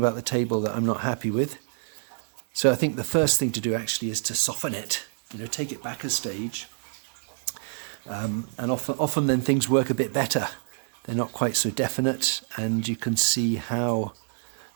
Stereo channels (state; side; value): silent; left; digital silence